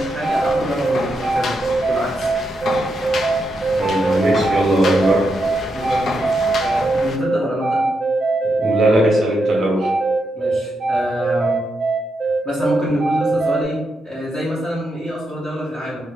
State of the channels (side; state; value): both; normal; correlation 0.83